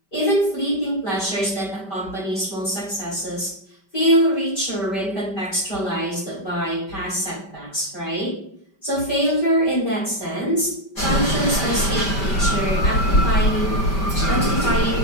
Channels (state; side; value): late; right; 5.1 ms